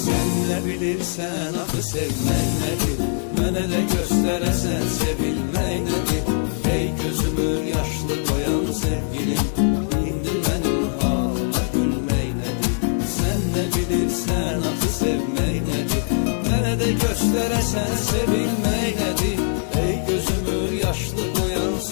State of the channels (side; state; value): right; silent; 64 dB below the other